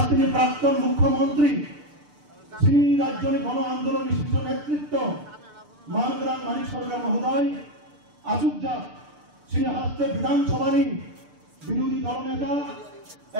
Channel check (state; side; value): late; left; 6.8 ms